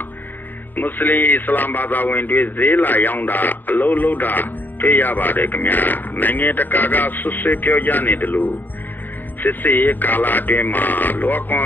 မွတ်စလင်အစ္စလာမ်ဘာသာဝင်တွေဈေးလာရောင်းတာအလုပ်လုပ်တာတွေ့ရပါတယ်ခင်ဗျာနိုင်ငံတကာကဆွဆွဲပြောကြနေတယ်လို့စစ်စေးကာလာတွင်မှာလောကွန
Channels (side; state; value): right; late; 0.090 ms